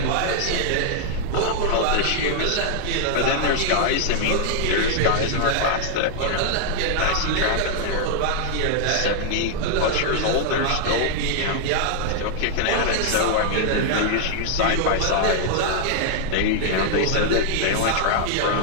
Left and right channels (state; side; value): different; both; correlation 0.00